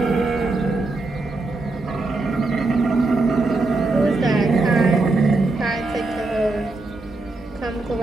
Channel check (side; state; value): left; quieter; 3.3 dB